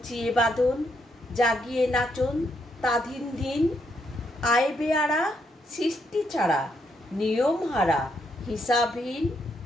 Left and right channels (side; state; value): both; normal; correlation 0.77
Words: বাঁধন, জাগিয়ে নাচন তাধিন দিন। আয় বেয়ারা সৃষ্টি ছাড়া নিয়ম হারা হিসাবহীন।